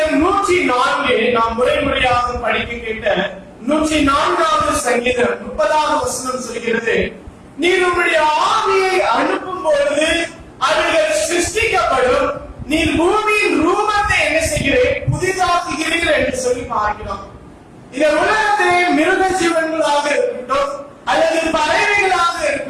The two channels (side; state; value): both; identical; correlation 1.00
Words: 104 நாம் முறையாக படிக்க கேட்ட 104வது சங்கீதம் 30வது வசனம் சொல்கிறது, நீர் உம்முடைய ஆவியை அனுப்பும் பொழுது அவைகள் சிருஷ்டிக்கப்படும், நீர் பூமியின் ரூபத்தை என்ன செய்கிறேன், புதிதாக்குகிறீர் என்று சொல்லி பார்க்கிறோம். இந்த உலகத்திலே மிருக ஜீவன்களாக இருக்கட்டும், அல்லது பறவைகளாக